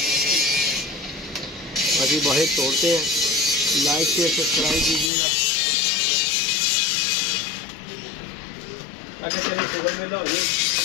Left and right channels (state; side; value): drops out; right; at 5.1 s